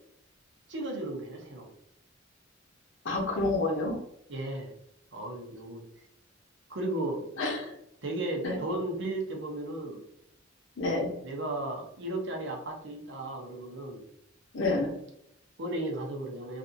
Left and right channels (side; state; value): both; normal; correlation 0.26